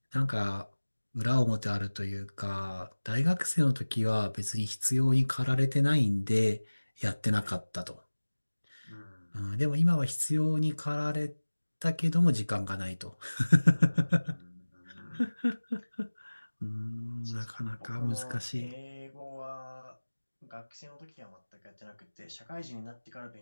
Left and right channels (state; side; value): inverted; both; correlation -1.00